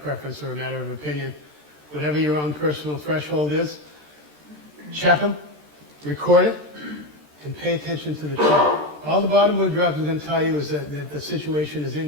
preference or a matter of opinion. Whatever your own personal threshold is, check them, record it, and pay attention to the trend. All the bottom board drops are going to tell you is that the situation is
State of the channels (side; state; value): left; late; 13 ms